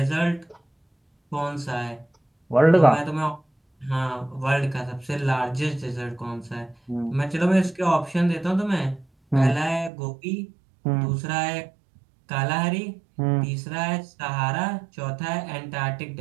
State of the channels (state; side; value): drops out; left; at 9.9 s